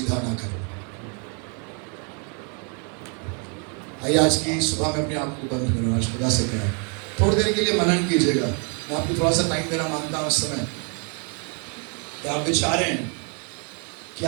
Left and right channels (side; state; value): left; quieter; 38.2 dB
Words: ना करें। आइए आज की सुबह में अपनी आंख को बंद करो, आज खुदा से कहें, थोड़ी देर के लिए मनन कीजिएगा। मैं आपको थोड़ा सा टाइम देना मांगता हूँ इस समय कि आप विचारें कि